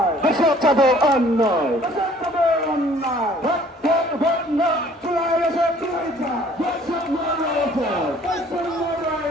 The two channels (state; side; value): normal; both; correlation 0.55